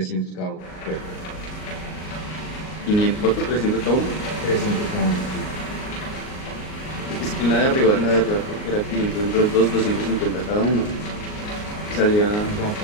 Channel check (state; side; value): late; right; 38 ms